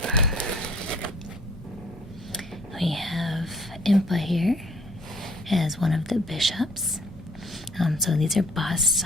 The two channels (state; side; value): normal; both; correlation 0.57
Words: We have Impa here as one of the bishops. So these are busts.